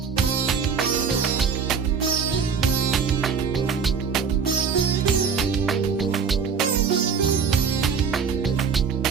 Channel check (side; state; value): left; quieter; 6.2 dB